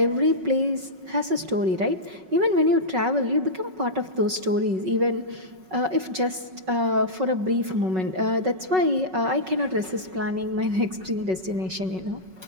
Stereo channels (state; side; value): late; left; 5.4 ms